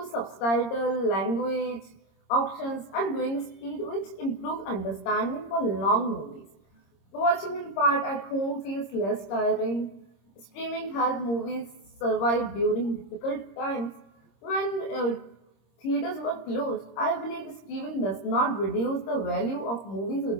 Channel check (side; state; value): right; late; 26 ms